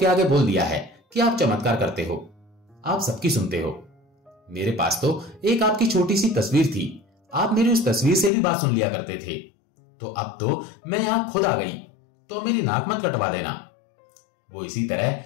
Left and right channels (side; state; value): right; drops out; at 8.3 s